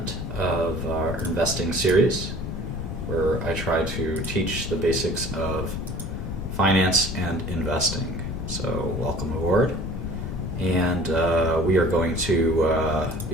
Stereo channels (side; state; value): left; noise; rumble, 6 dB below the sound